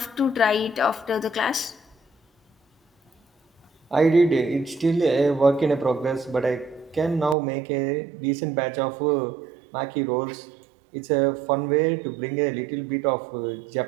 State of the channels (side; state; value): left; drops out; at 7.4 s